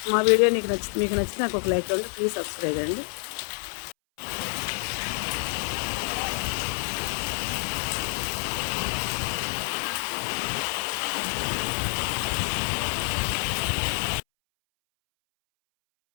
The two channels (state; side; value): silent; right; 60 dB below the other